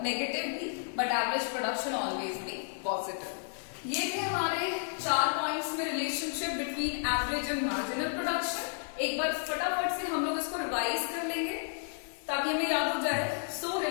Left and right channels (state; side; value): silent; right; digital silence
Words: नेगेटिव भी, बट एवरेज प्रोडक्शन ऑलवेज भी पॉजिटिव। ये थे हमारे 4 पॉइंट्स में relationship between average and marginal production. एक बार फटाफट से हम लोग इसको रिवाइज कर लेंगे ताकि हमें याद हो जाए। सो